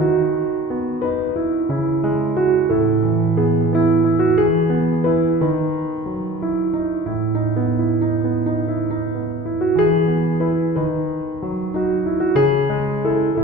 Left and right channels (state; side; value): normal; both; correlation 0.46